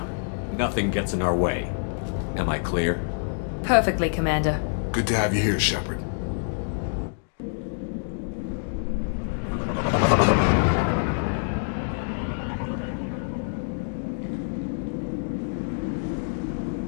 Nothing gets in our way. Am I clear? Perfectly, Commander. Good to have you here, Shepard.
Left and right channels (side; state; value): right; silent; digital silence